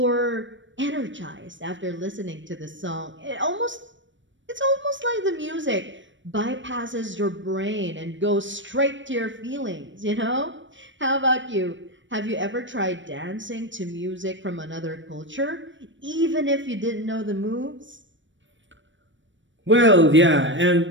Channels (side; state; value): left; late; 0.55 ms